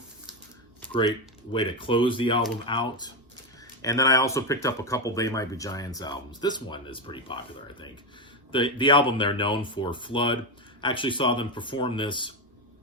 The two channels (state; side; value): normal; both; correlation 0.12